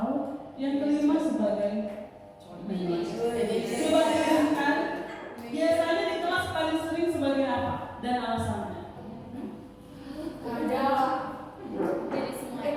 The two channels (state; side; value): identical; both; correlation 1.00